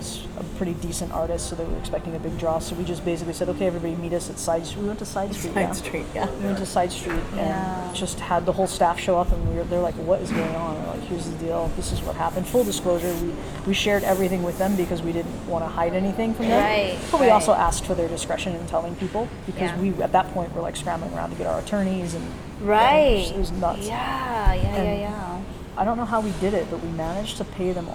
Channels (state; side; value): identical; both; correlation 1.00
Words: a pretty decent artist, so they were expecting a big draw. So we just basically said, okay, everybody meet us at Side Street. We went to Side Street. Side Street, yeah. We went to Side Street and just had the whole staff show up, and they're like, what is going on? We're like, here's the deal. This is what happened. Full disclosure, we shared everything with them because we didn't want to hide anything from them. Right, But we right. also asked for their discretion in telling people because Yeah. we, at that point, were like scrambling around to get our attorneys and Right. it was nuts. Yeah. I don't know how we did it, but we managed to pay them